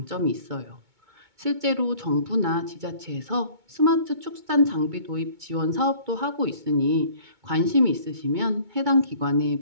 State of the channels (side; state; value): left; late; 2.2 ms